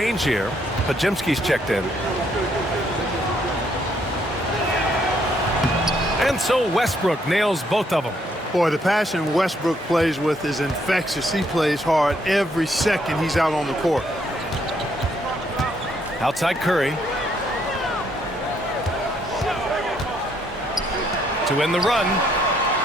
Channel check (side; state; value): both; normal; correlation 0.71